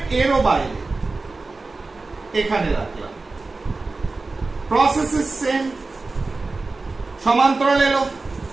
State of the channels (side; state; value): left; quieter; 3.6 dB